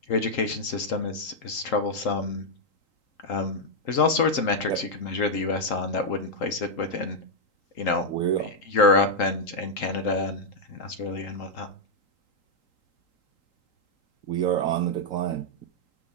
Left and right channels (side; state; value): right; late; 3.8 ms